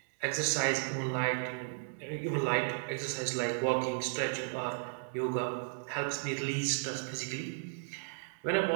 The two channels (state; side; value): silent; left; digital silence